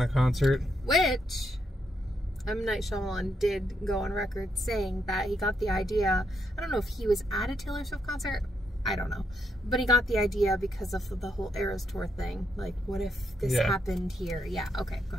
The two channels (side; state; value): both; normal; correlation 0.78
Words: of concert. Which M. Night Shyamalan did go on record saying that he got the idea. I don't know if he was at a Taylor Swift concert. I don't know. But he got the idea because of the whole Eras Tour thing. Like, what if this happened here? Yeah, okay, go